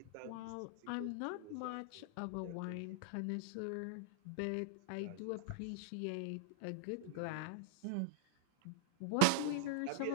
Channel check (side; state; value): both; different; correlation 0.00